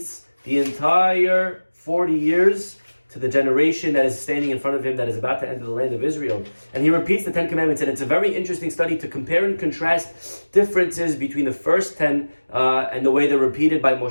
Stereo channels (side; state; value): both; inverted; correlation -1.00